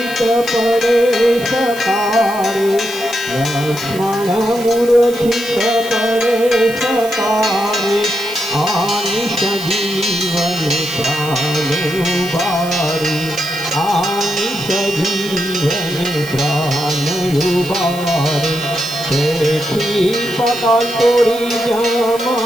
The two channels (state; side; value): noise; right; hiss, 15 dB below the sound